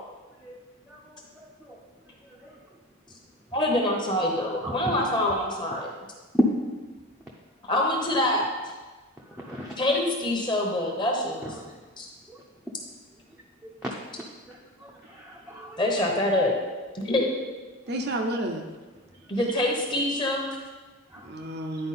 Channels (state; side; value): normal; both; correlation 0.30